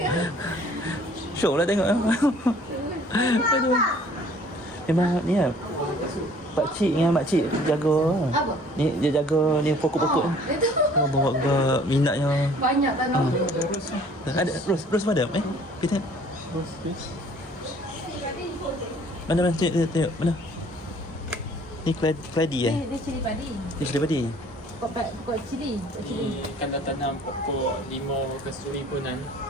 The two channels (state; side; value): normal; both; correlation 0.55